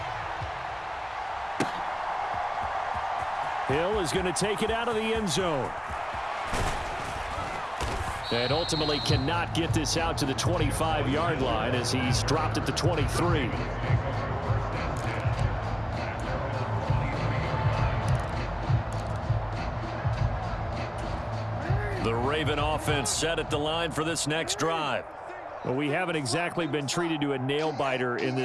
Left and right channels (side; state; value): both; identical; correlation 1.00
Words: Hill is going to take it out of the end zone. And ultimately cannot get this out to the 25-yard line as he's dropped at the 23. The Raven offense set at the line for this next drive. Well, we haven't exactly been treated to a nail-biter in